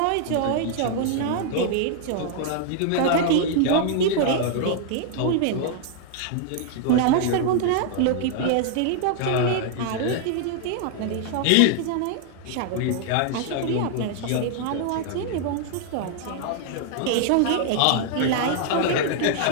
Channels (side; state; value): both; different; correlation 0.00